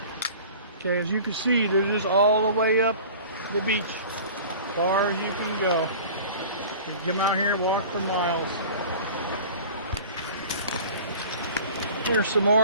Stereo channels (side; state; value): both; inverted; correlation -0.41